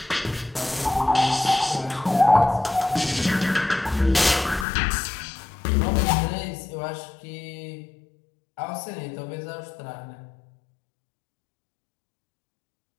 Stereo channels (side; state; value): right; drops out; at 4.7 s